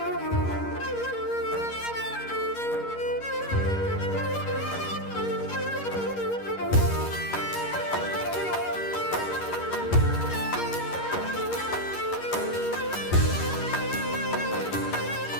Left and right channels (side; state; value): right; late; 11 ms